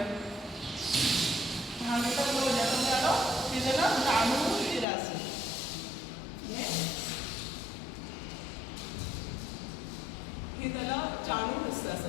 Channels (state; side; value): drops out; right; at 4.9 s